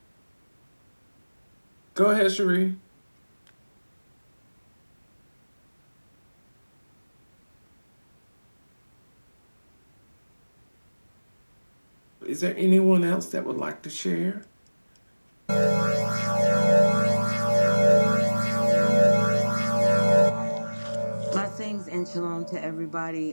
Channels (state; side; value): inverted; both; correlation -1.00